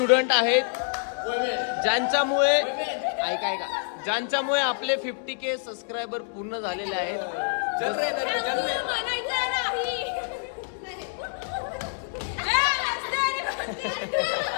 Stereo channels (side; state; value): right; silent; digital silence